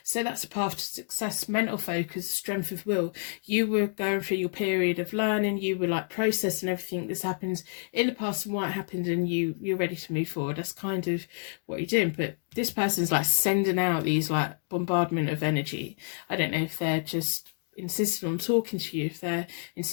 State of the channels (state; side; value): silent; right; digital silence